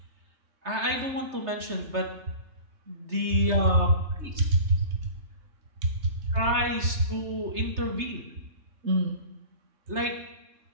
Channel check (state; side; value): late; left; 3.3 ms